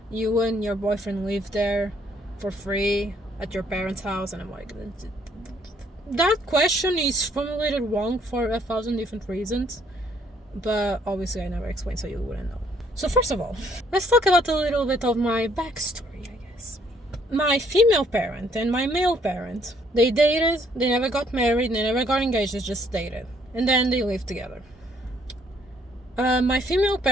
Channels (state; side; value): normal; both; correlation 0.66